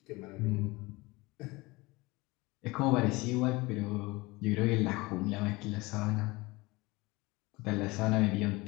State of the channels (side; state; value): right; quieter; 22.7 dB